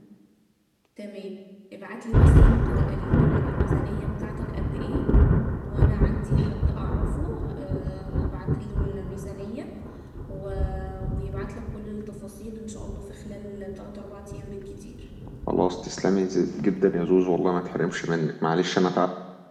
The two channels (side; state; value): both; identical; correlation 1.00